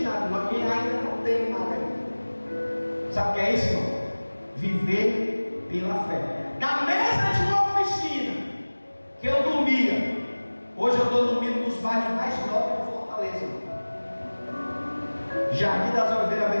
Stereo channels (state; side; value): inverted; both; correlation -1.00